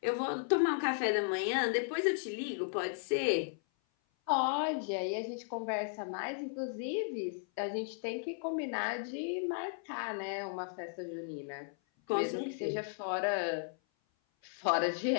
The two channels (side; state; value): right; silent; 54 dB below the other